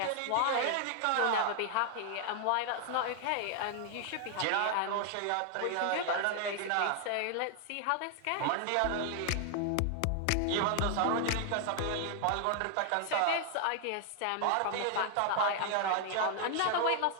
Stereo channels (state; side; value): different; both; correlation 0.00